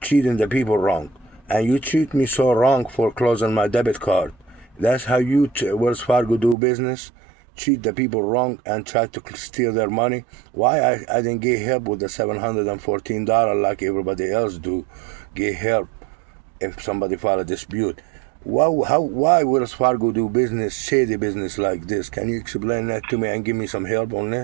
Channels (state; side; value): drops out; left; at 6.6 s